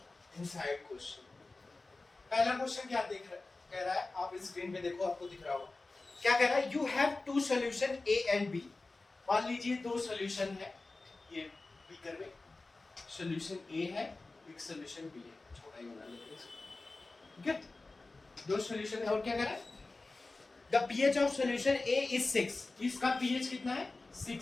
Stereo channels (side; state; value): right; quieter; 3.4 dB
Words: इनसाइड क्वेश्चन। पहला क्वेश्चन क्या कह रहा है, आप स्क्रीन पे देखो, आपको दिख रहा होगा। क्या कह रहा है, you have two solution A and B. मान लीजिए दो सॉल्यूशन है, ये बीकर में सॉल्यूशन ए है, एक सॉल्यूशन बी है, छोटा ही बना लेते हैं। ठीक है, दो सॉल्यूशन है और क्या कह रहा है, the pH of solution A is 6। इसका पीएच कितना है,